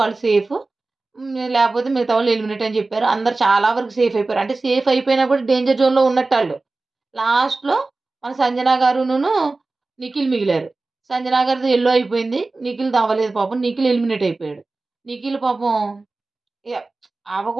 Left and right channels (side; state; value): left; quieter; 3.4 dB